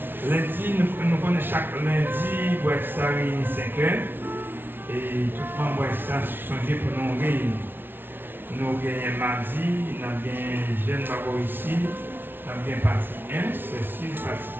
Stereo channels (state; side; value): late; left; 0.10 ms